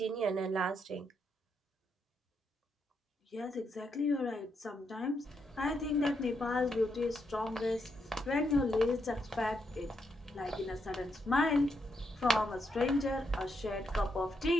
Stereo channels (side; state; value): both; normal; correlation 0.80